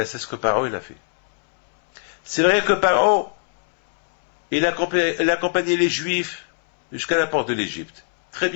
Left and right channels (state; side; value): silent; right; 65 dB below the other